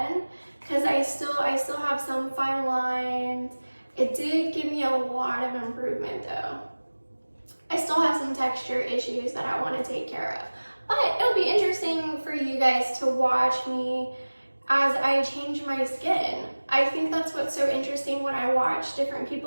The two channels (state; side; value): inverted; both; correlation -1.00